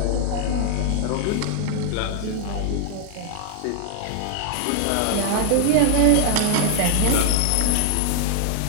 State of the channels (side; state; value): both; different; correlation 0.00